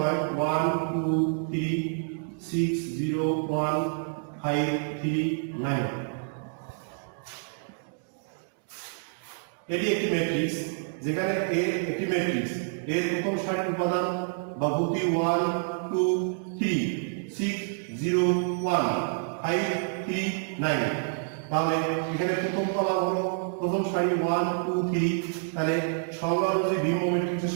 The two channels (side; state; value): left; silent; digital silence